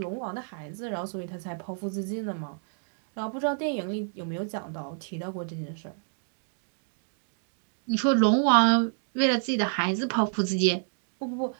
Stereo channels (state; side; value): silent; left; digital silence